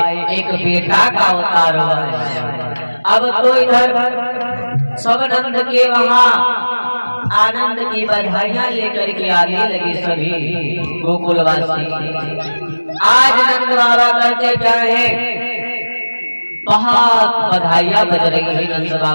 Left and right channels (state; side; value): inverted; both; correlation -1.00